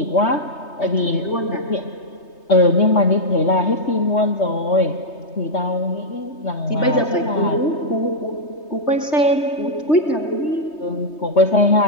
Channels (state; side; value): late; right; 3.3 ms